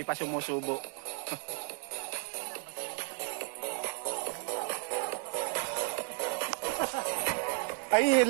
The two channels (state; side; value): quieter; left; 38.1 dB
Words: pa sumusubo. Ay,